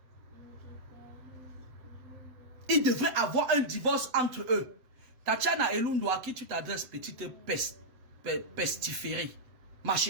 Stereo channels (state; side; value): late; left; 7.9 ms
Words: Il devrait avoir un divorce entre eux. Tatiana Elundu, à qui tu t'adresses, petite pestiférée, ma